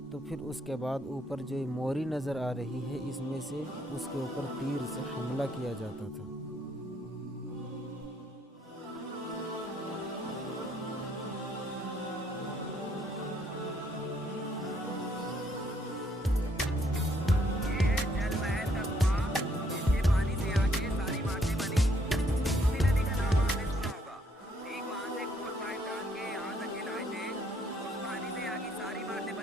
तो फिर उसके बाद ऊपर जो मोरी नज़र आ रही है, इसमें से उसके ऊपर तीर से हमला किया जाता था।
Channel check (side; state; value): both; normal; correlation 0.68